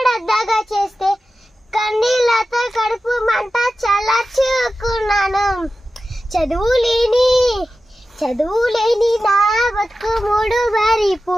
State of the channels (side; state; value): both; normal; correlation 0.93